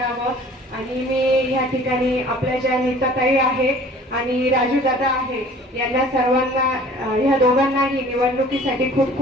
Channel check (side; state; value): both; normal; correlation 0.49